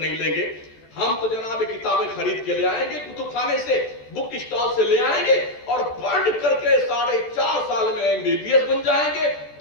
لیں گے, ہم تو جناب کتابیں خرید کے لے آئیں گے، کتب خانے سے، بک اسٹال سے لے آئیں گے اور پڑھ کر کے 4.5 سال میں MBBS بن جائیں گے،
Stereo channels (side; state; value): right; late; 14 ms